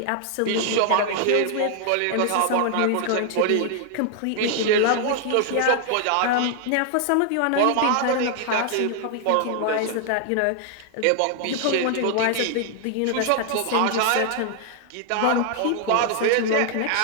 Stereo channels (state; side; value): different; both; correlation 0.00